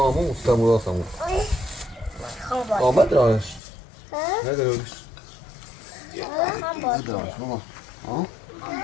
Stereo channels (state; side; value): drops out; right; at 3.6 s